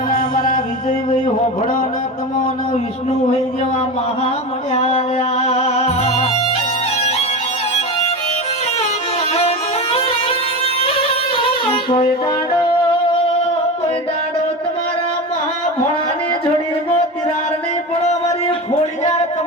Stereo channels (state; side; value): normal; both; correlation 0.24